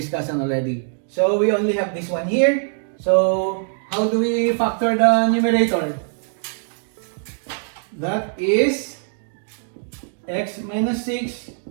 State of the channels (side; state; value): left; silent; digital silence